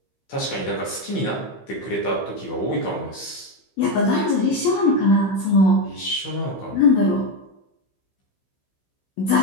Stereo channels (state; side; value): late; right; 15 ms